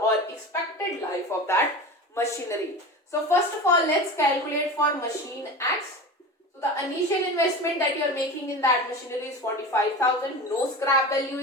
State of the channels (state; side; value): normal; both; correlation 0.31